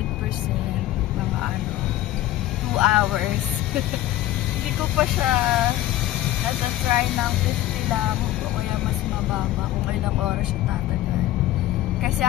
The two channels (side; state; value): right; quieter; 14.7 dB